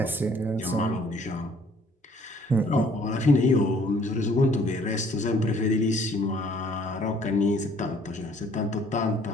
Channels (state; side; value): normal; both; correlation 0.59